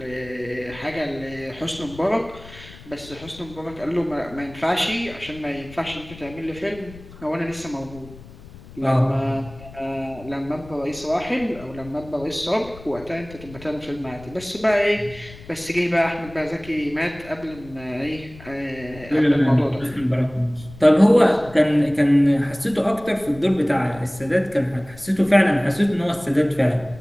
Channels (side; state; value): left; noise; rumble, 18 dB below the sound